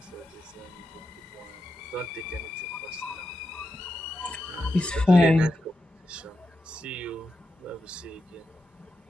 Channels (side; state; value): both; normal; correlation 0.87